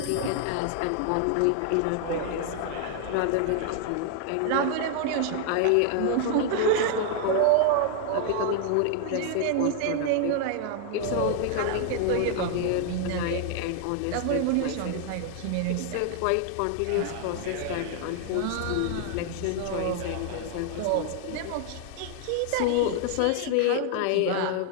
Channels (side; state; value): both; different; correlation 0.00